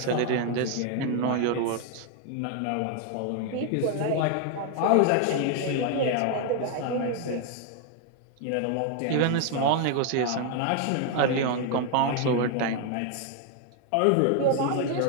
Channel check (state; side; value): different; both; correlation 0.00